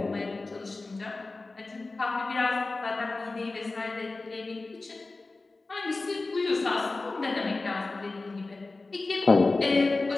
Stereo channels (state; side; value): quieter; right; 3.4 dB